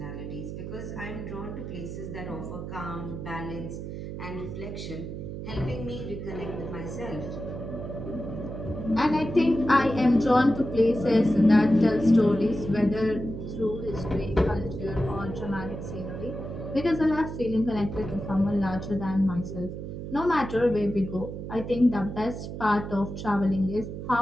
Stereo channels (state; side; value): noise; right; hum, 7 dB below the sound